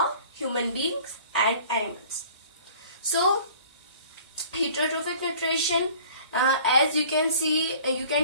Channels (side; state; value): both; inverted; correlation -0.49